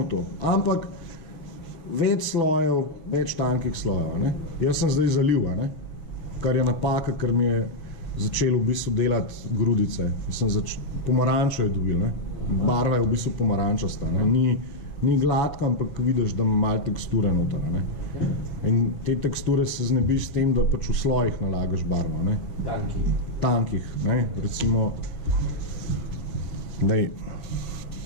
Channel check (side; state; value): right; late; 6.7 ms